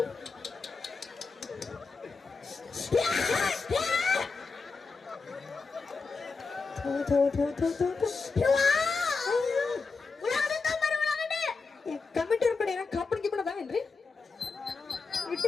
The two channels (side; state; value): right; quieter; 4.5 dB